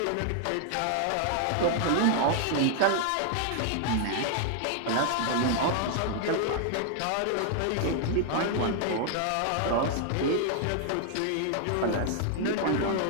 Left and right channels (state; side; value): different; both; correlation 0.00